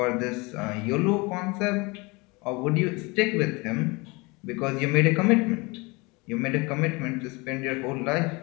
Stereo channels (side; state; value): right; quieter; 26.1 dB